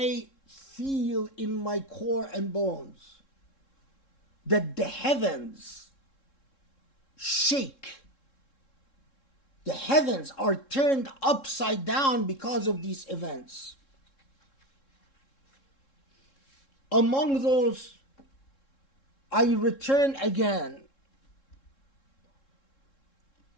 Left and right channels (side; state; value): right; late; 3.7 ms